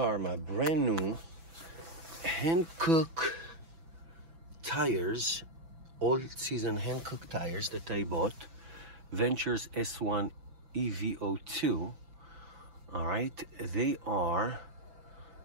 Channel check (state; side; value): late; left; 6.0 ms